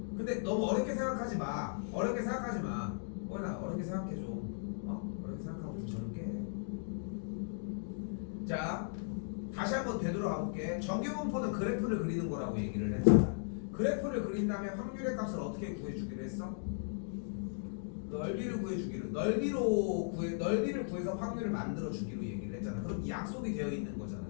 근데 너무 어렵게 생각하지 마. 어렵게 생각하지 마. 나 어렵게 생각해 줘. 어렵게 생각하고 좀 젊게 해. 자, 다시 한번 되돌아가 볼게. 정규분포는 그래프를 그리는 거라고 얘기를 했잖아. 그래프를 그린 다음에 확률의 값을 어떻게 구해주기로 했어? 넓이를 구해주기로, 넓이를 구해서 확률을 만들어주기로 얘기를 했잖아. 그럼 약속이 되어 있는 거잖아,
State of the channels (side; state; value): right; silent; digital silence